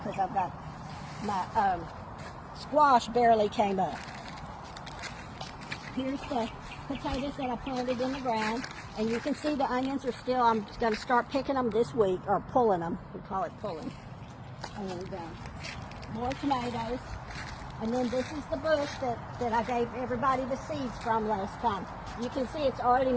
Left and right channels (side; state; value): both; identical; correlation 1.00